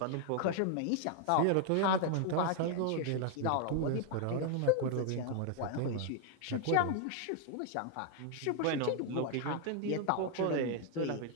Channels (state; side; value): different; both; correlation 0.00